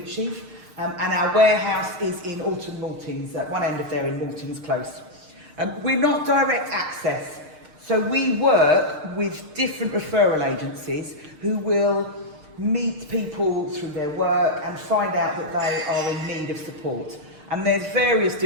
Sheaf, and our warehouse is in Alton Maltings, at one end of there in Maltings Close. We're not direct access, so we work with different referral agencies who will meet people through their work and find out that they are in need of support. And there's various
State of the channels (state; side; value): late; left; 6.5 ms